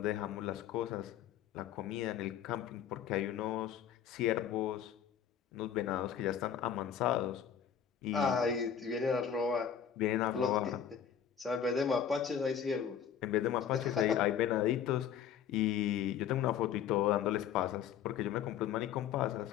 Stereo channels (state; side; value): quieter; right; 8.7 dB